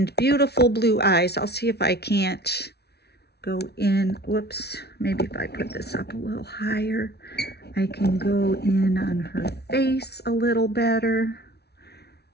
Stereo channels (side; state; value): right; late; 0.48 ms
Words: beautiful blue eyes. I'll see if I can't go in. Whoops, maybe if I put this up a little higher, I can go in on her face a little better.